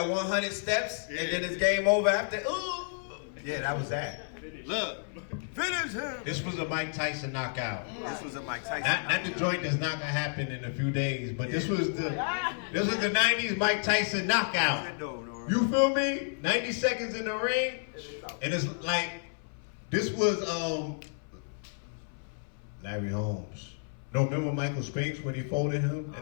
100 steps and then it's game over after, ooh. Yeah, that was that. Look. Finish him. This was a Mike Tyson knockout. This was a Mike Tyson Not the joint that's not gonna happen in a few days, but this was the 90s Mike Tyson knockout. You feel me? 90 seconds in the ring, and it's like this was Larry Holmes. No, remember Michael Spinks when he folded him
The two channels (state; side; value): silent; right; 57 dB below the other